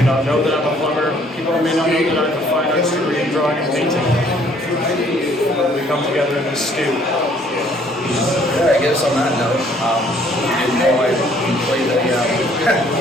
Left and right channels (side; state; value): both; normal; correlation 0.61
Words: not know that I'm a plumber. People may not know that I have a fine arts degree in drawing and painting. We come together in this stew. Yeah, I guess on that note, you know, I play the,